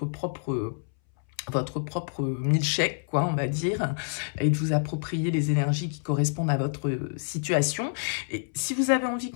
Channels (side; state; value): right; silent; 60 dB below the other